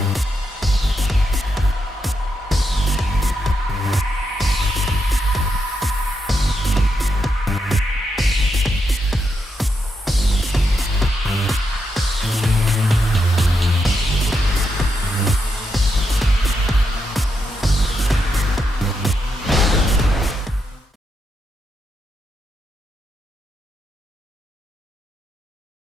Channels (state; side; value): normal; both; correlation 0.83